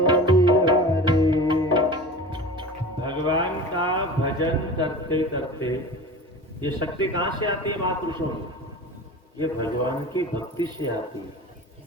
भगवान का भजन करते करते ये शक्ति कहां से आती है महापुरुषों में? ये भगवान की भक्ति से आती है।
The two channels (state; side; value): normal; both; correlation 0.35